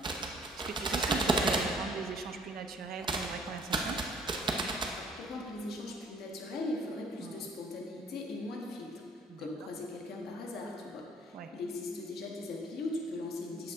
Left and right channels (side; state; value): both; normal; correlation 0.57